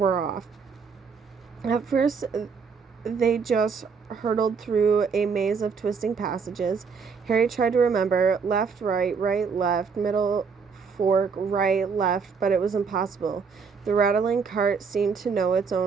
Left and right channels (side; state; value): left; quieter; 5.6 dB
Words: off. At first, they just hurtled through a maze of twisting passages. Harry tried to remember left, right, left, middle, fork, right, left, but it was impossible. The rattling cart seemed to know its